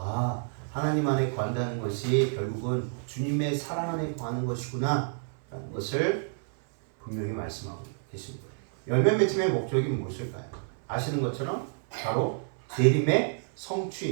하나님 안에 거한다는 것이 결국은 주님의 사랑 안에 거하는 것이구나 라는 것을 분명히 말씀하고 계십니다. 열매 맺힘의 목적이 무엇일까요? 아시는 것처럼 바로 재림의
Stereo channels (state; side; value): silent; left; 58 dB below the other